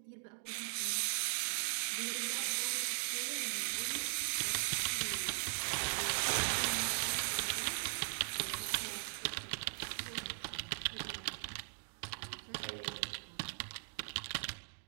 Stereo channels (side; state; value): left; silent; digital silence